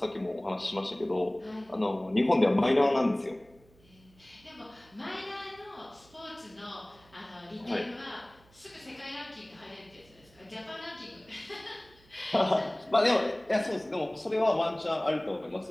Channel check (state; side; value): noise; right; hum, 28 dB below the sound